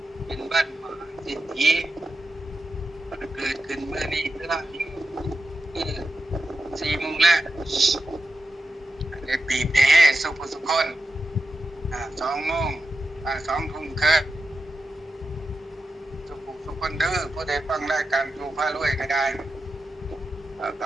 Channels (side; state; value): both; normal; correlation 0.89